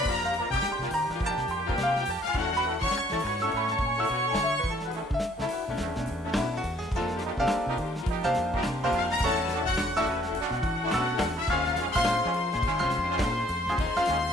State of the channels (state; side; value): normal; both; correlation 0.63